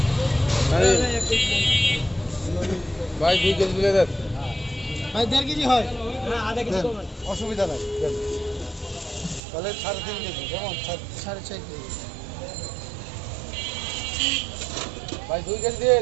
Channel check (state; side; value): drops out; left; at 9.4 s